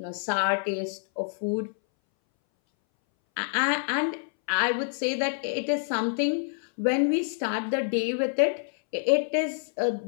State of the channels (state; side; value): silent; right; 60 dB below the other